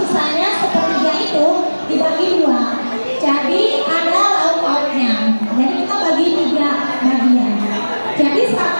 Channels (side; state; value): both; inverted; correlation -1.00